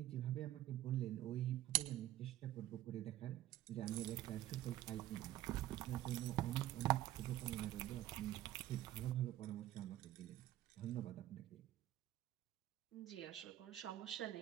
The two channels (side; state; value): left; quieter; 14.0 dB